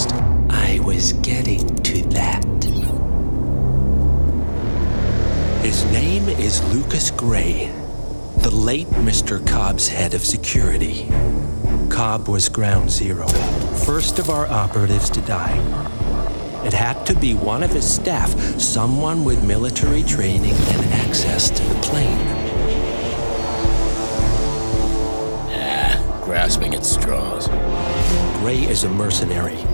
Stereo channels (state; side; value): inverted; both; correlation -1.00